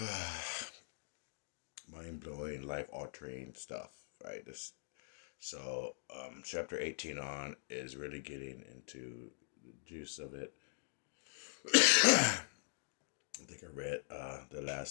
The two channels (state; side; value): silent; right; digital silence